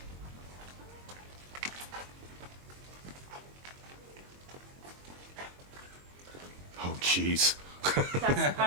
Oh, jeez. That's the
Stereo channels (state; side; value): late; left; 22 ms